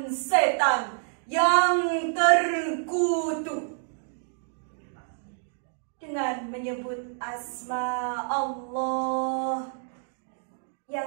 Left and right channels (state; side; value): silent; left; digital silence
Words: setan yang terkutuk dengan menyebut asma Allah